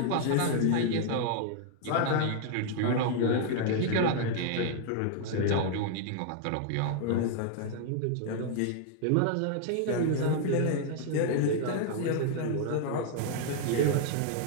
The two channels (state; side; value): different; both; correlation 0.00